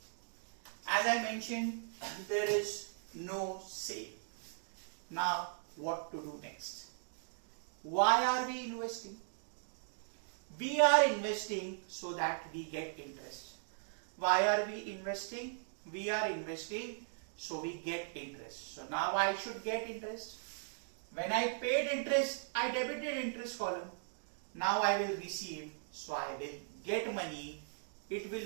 As I mentioned, there is no sale. Now what to do next? Why are we investing? We are investing so that we get interest. Why are we investing? We are investing so we get interest. So now I should get interest. When I paid interest, I debited interest column. Now I will receive, so I will get money. It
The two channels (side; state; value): left; silent; digital silence